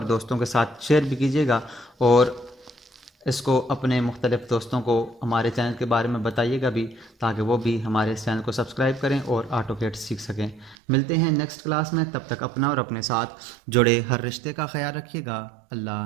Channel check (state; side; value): drops out; left; at 10.8 s